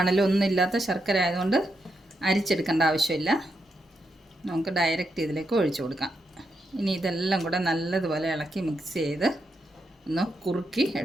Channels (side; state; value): both; normal; correlation 0.83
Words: ഒന്നും ഇല്ലാത്ത ശർക്കര ആയതുകൊണ്ട് അരിച്ചെടുക്കേണ്ട ആവശ്യമില്ല. നമുക്ക് ഡയറക്റ്റ് ഇതിലേക്ക് ഒഴിച്ചു കൊടുക്കാം. ഇനി ഇതെല്ലാം കൂടെ നല്ലതുപോലെ ഇളക്കി മിക്സ് ചെയ്ത് ഒന്ന് കുറുക്കി